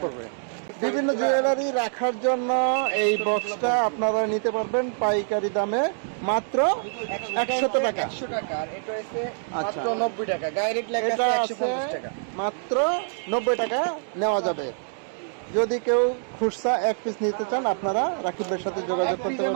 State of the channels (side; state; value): left; silent; digital silence